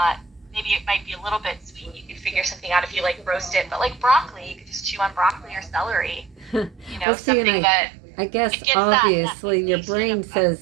maybe it might be a little bit sweet. You could figure something out if you like roast it, but like broccoli, you could just chew on broccoli or celery. well, see, and I guess obviously your brain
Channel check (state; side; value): drops out; left; at 7.1 s